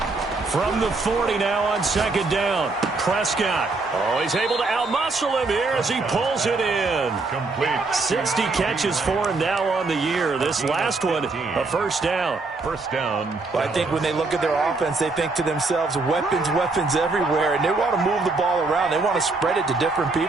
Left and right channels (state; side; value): quieter; left; 3.7 dB